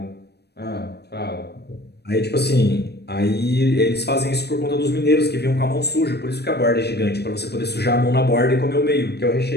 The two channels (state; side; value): late; right; 0.48 ms